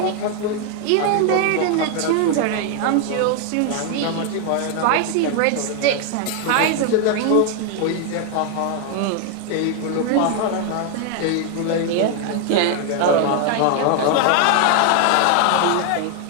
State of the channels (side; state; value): both; different; correlation 0.00